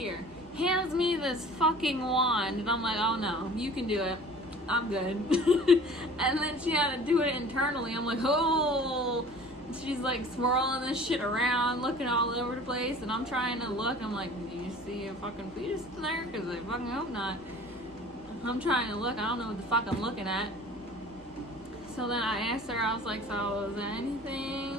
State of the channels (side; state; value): both; normal; correlation 0.45